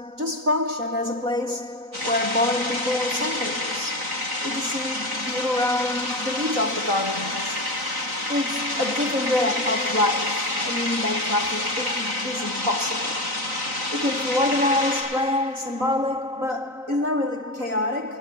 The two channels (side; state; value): left; late; 3.9 ms